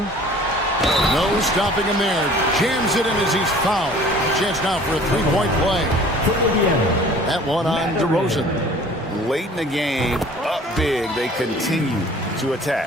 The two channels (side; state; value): both; normal; correlation 0.49